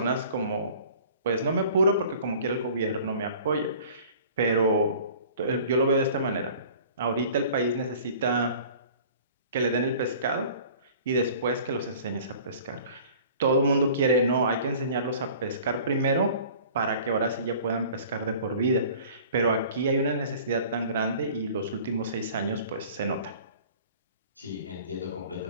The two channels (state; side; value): inverted; both; correlation -0.47